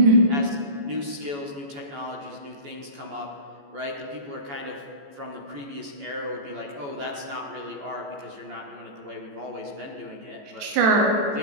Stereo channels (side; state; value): left; late; 14 ms